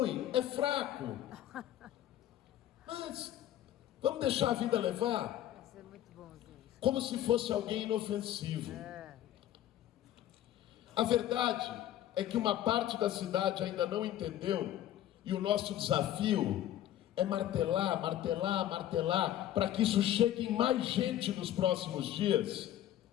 é fraco, mas vamos deixar a vida levar. Isso é muito bom, gente. Como se fosse alguém inofensivo. A verdade é que uma parte da cidade ainda não entendeu, e o nosso desafio é martelar, martelar, martelar, para que isso chegue em mais gente nos próximos dias,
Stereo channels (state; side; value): quieter; right; 12.4 dB